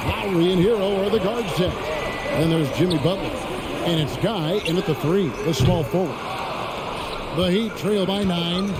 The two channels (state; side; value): identical; both; correlation 1.00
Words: and Hero are the guard set. Then there's Jimmy Butler. And it's Guy in at the 3, the small forward. The Heat trail by 9.